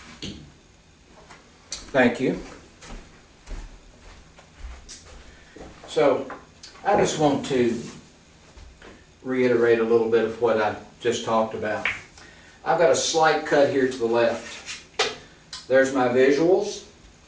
Thank you. So, I just want to reiterate a little bit of what I just talked about. I've got a slight cut here to the left. There's my visuals.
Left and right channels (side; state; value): both; identical; correlation 1.00